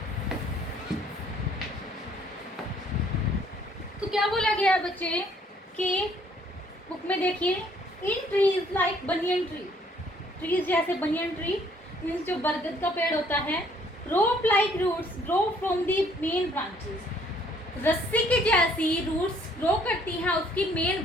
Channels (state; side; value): normal; both; correlation 0.62